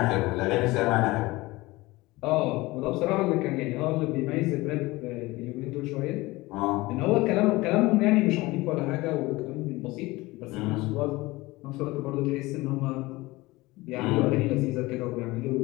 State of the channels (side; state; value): right; quieter; 20.7 dB